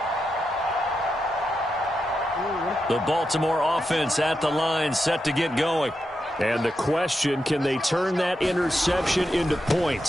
The Baltimore offense at the line, set to get going. And the question, can they turn that interception into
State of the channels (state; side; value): normal; both; correlation 0.86